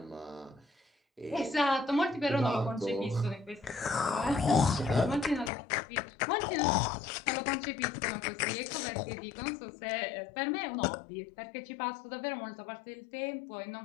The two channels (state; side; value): drops out; right; at 5.5 s